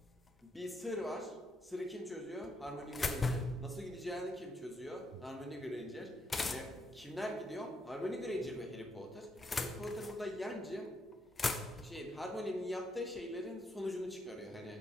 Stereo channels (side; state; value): both; normal; correlation 0.77